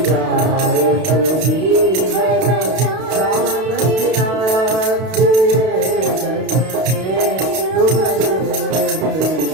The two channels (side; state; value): left; late; 32 ms